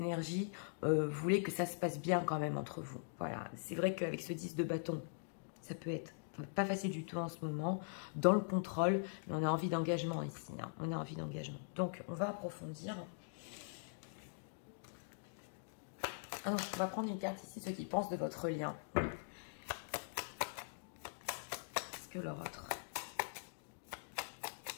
vous voulez que ça se passe bien quand même entre vous. Voilà, c'est vrai qu'avec ce 10 de bâton, ça peut être pas facile du tout en ce moment, dans le contrôle, mais on a envie d'engagement ici. Hein. On a envie d'engagement. Donc, on va approfondir. Ah non, on va prendre une carte ici, ceux qui pensent de votre lien. Est-ce que leur autre?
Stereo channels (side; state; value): right; silent; digital silence